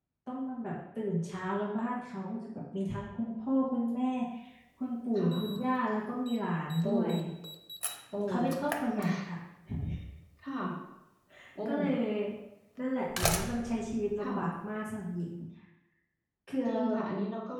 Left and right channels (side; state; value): both; identical; correlation 1.00